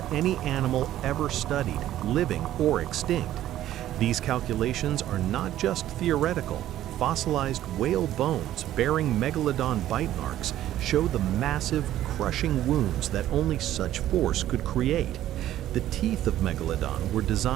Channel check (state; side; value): quieter; left; 13.0 dB